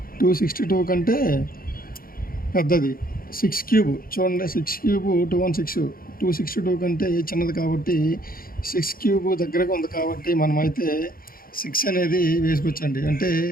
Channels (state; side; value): late; right; 0.42 ms